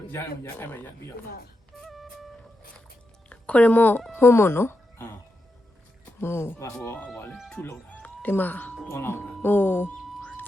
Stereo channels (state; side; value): normal; both; correlation 0.87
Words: ရအောင်ရအဲ့မရပြီးတော့ ခေါ်ရမို့ဟိုးမနော် အာ ဟို ဟိုလေထုလောက်တာ ဒီမှာ တွန်းလောက်တာ ဟို